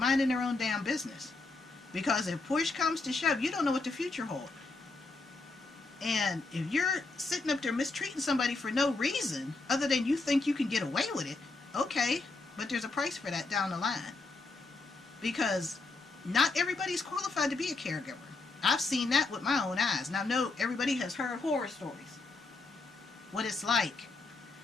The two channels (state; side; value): quieter; right; 3.5 dB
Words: their own damn business. Because if push comes to shove, you don't know what the future holds. And if you're sitting up there mistreating somebody for no reason other than you think you can get away with it, okay, but there's a price for that down the line. Because not everybody's qualified to be a caregiver. I've seen that with my own eyes. Now, no, everybody has heard horror stories. What it's like.